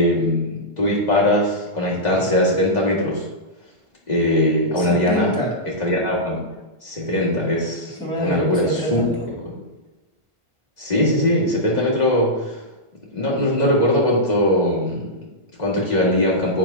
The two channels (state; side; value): late; left; 1.5 ms